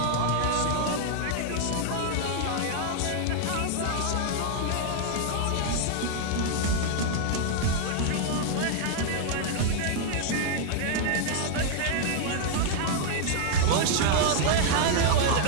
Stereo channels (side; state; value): both; different; correlation 0.00